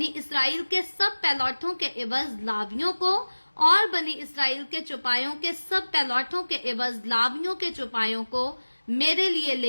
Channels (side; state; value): both; inverted; correlation -1.00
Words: اسرائیل کے سب پہلوٹوں کے عوض لاویوں کو، اور بنی اسرائیل کے چوپایوں کے سب پہلوٹوں کے عوض لاویوں کے چوپایوں کو میرے لیے